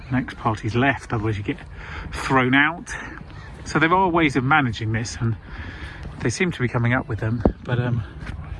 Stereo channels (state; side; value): identical; both; correlation 1.00